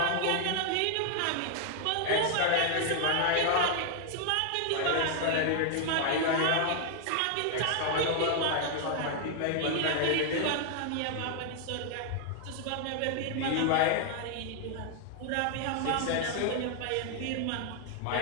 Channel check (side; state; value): both; different; correlation 0.00